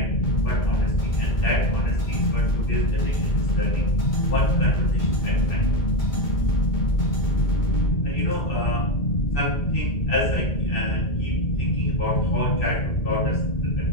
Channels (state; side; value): late; right; 2.2 ms